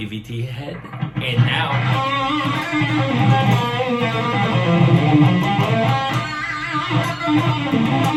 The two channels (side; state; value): both; identical; correlation 1.00